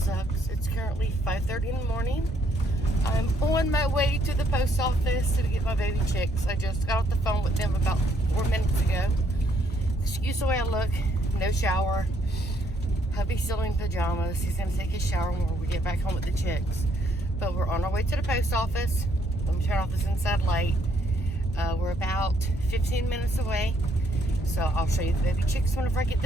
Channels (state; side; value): normal; both; correlation 0.69